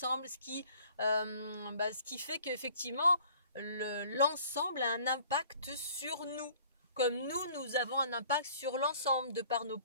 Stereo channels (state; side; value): inverted; both; correlation -0.53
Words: ce qui fait qu'effectivement l'ensemble a un impact sur nous, comme nous avons un impact sur l'ensemble de par nos